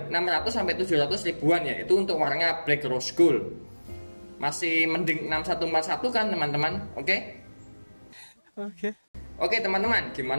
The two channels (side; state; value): both; inverted; correlation -1.00